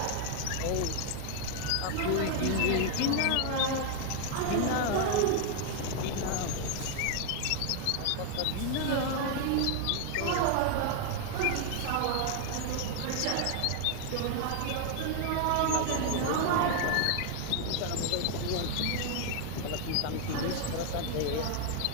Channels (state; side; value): different; both; correlation 0.00